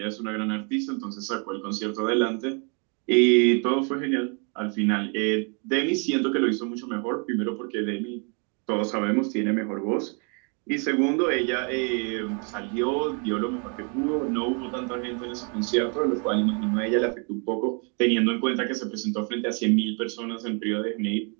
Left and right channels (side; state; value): left; quieter; 37.3 dB